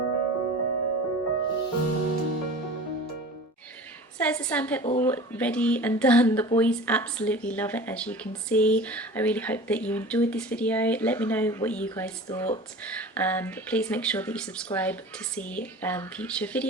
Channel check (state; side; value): normal; both; correlation 0.38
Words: So there's the sandpit all ready and done. The boys absolutely love it, as you can see. I really hope that you enjoyed this video. Let me know what you guys thought, and please make sure that you subscribe to see future